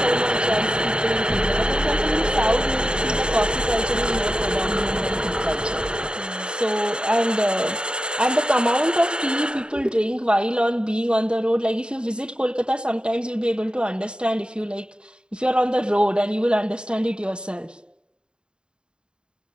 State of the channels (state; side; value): late; left; 0.050 ms